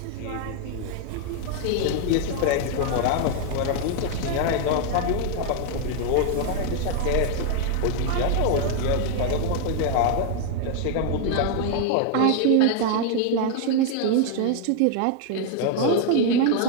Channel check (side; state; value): both; different; correlation 0.00